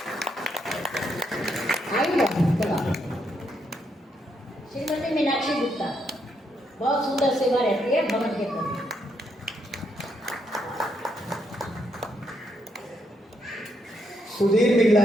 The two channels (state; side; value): normal; both; correlation 0.77